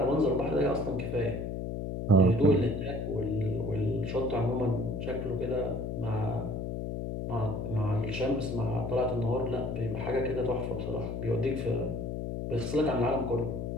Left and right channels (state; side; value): noise; left; hum, 4 dB below the sound